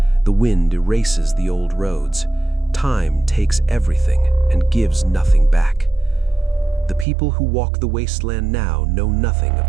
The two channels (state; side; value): drops out; left; at 7.1 s